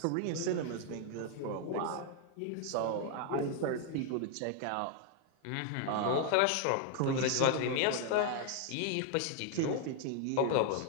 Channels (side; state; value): both; different; correlation 0.00